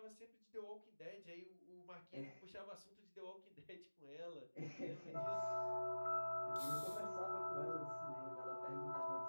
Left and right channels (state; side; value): inverted; both; correlation -1.00